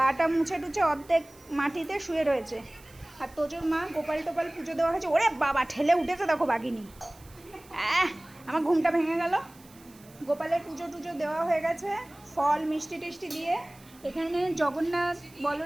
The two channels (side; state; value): right; noise; hiss, 25 dB below the sound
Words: মুছে টুছে অর্ধেক মাটিতে শুয়ে রয়েছে। আর তোজোর মা গোপাল টোপাল পুজো দেওয়া হয়েছে। ওরে বাবা, ঠেলে উঠেছে দেখো বাঘিনী। আমার ঘুমটা ভেঙে গেল। গোপালের পুজো টুজো দেওয়া হয়ে গেছে, ফল মিষ্টি টিষ্টি দিয়ে। এখানে জগন্নাথ,